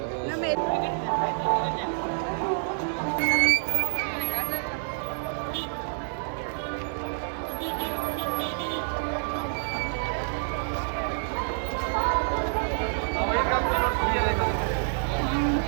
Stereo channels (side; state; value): left; silent; 60 dB below the other